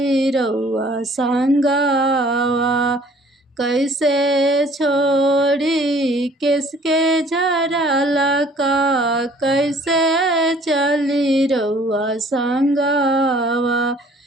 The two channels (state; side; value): normal; both; correlation 0.55